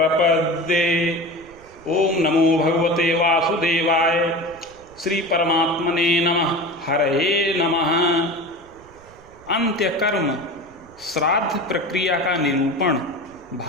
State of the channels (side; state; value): right; noise; rumble, 24 dB below the sound